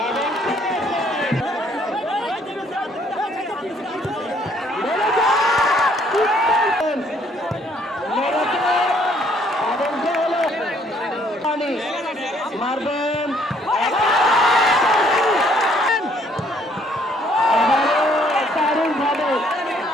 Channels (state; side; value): normal; both; correlation 0.64